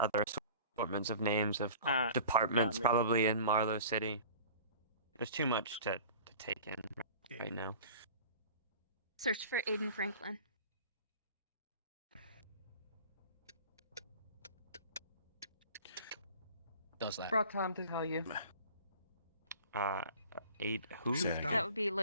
assortments of names of Ah, departments got me. probably in Marlowe City. There's too much to take in right now. Search for Aiden Franklin. does that. Brought Tom to tell you. 8 who? That would be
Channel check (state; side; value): inverted; both; correlation -0.43